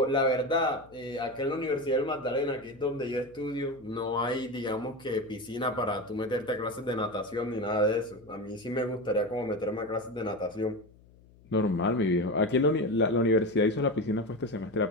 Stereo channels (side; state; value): left; noise; hum, 26 dB below the sound